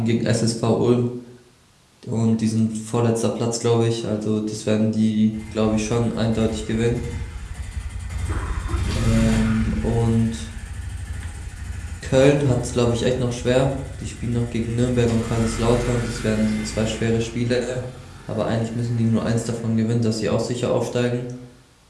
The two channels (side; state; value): both; identical; correlation 1.00